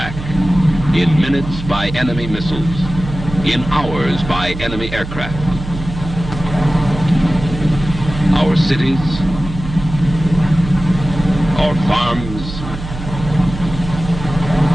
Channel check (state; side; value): noise; right; hum, 10 dB below the sound